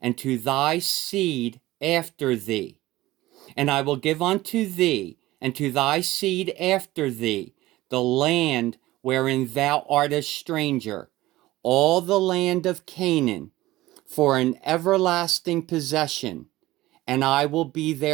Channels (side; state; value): left; quieter; 17.4 dB